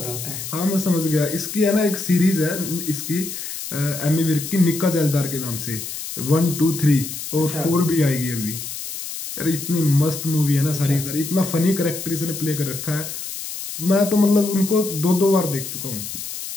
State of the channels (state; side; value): noise; left; hiss, 8 dB below the sound